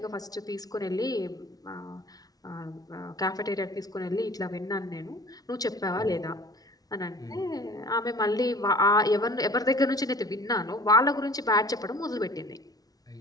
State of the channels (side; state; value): right; late; 0.18 ms